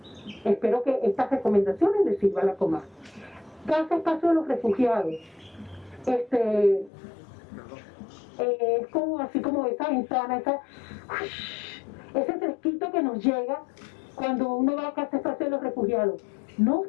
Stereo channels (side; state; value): right; drops out; at 6.9 s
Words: Espero que estas recomendaciones les sirvan a la Comar. Casa Espacio de los Refugiados. Es como así como esa ventana, ese fresquito que nos llega cuando uno va a Casa Espacio de los Refugiados. No